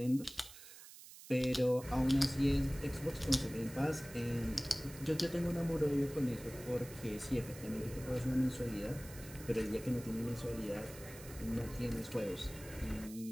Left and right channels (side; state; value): right; noise; hiss, 16 dB below the sound